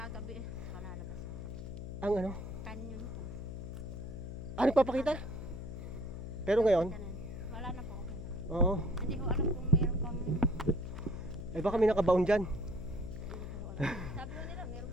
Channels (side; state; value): left; noise; hum, 7 dB below the sound